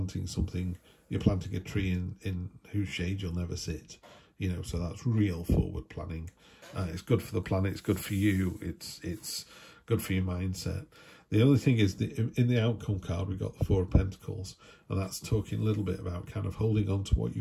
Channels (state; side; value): identical; both; correlation 1.00